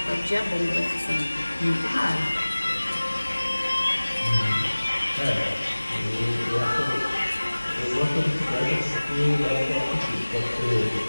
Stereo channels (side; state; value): both; inverted; correlation -1.00